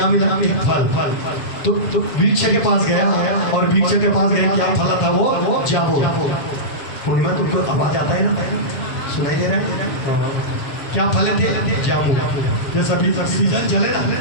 मिला हमें फल। तो वृक्ष के पास गया और वृक्ष के पास गया, क्या फल था वो जाबो। पूर्णिमा तुमको आवाज आता है ना, सुनाई दे रहा है? क्या फल थे? जामुन। जैसा अभी सीजन चले ना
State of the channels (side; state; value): right; late; 7.1 ms